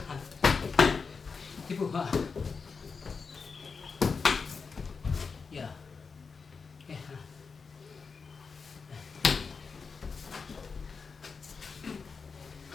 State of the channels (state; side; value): quieter; right; 5.1 dB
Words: Tipu. Ha. Ya. Ha.